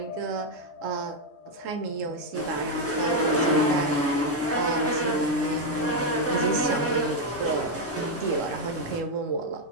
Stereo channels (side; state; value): both; normal; correlation 0.02